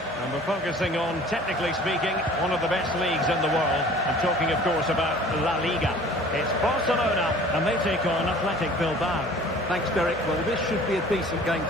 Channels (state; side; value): normal; both; correlation 0.48